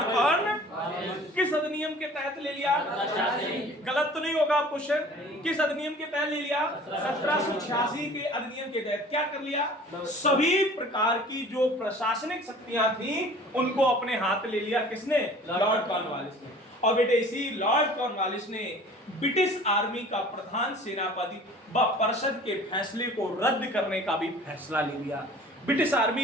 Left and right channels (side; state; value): both; normal; correlation 0.47